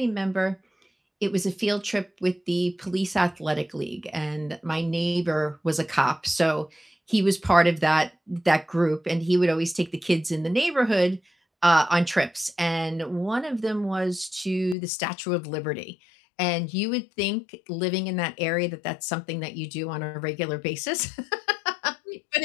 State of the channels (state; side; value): drops out; right; at 14.8 s